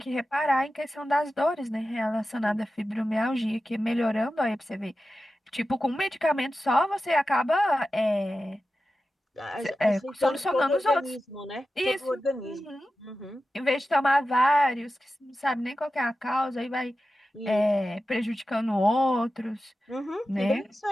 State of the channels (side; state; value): both; normal; correlation 0.93